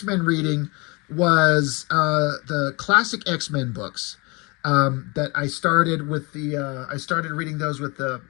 reading was the classic X-Men books that I started with I started reading those with the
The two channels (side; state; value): right; quieter; 27.5 dB